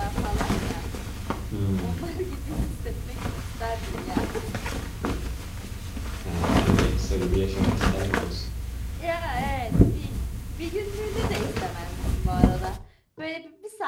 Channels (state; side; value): identical; both; correlation 1.00